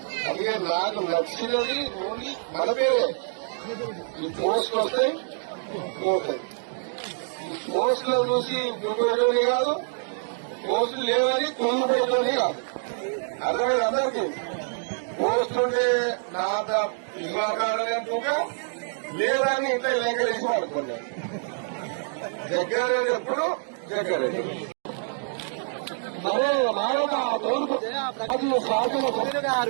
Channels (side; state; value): left; silent; digital silence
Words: అందుకే నాకు నచ్చినది ఓన్లీ మన పేరే ఈ పోస్ట్ వస్తాయి పోతాయి. పోస్టులో చూసి గురిపోయేటోని కాదు, పోస్టులు లేవని కుంగిపోయేటోని కాదు. అర్థమైంది అందరికీ. పోస్ట్ ఉంటే నా ఇవ్వకాడగా లేదని ఇంట్లో లేఖలేసి వాడుకున్నాను. జగ్గారెడ్డి ఎప్పుడు జగ్గారెడ్డి మరే మానవ తూర్పు శాసన సభ్యులు